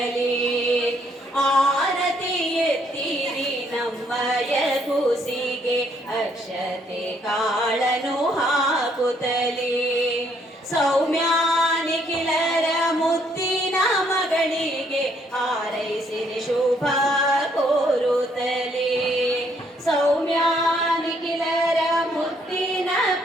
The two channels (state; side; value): normal; both; correlation 0.69